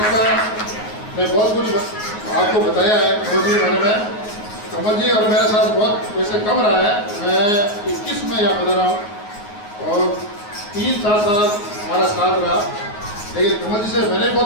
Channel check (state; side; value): late; right; 9.5 ms